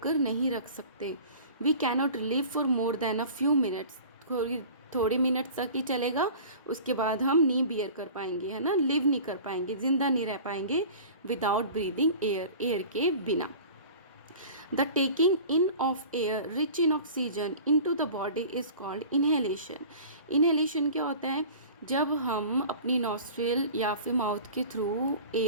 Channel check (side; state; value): both; inverted; correlation -0.41